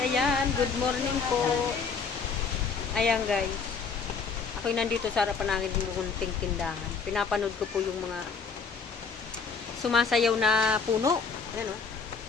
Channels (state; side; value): quieter; right; 5.3 dB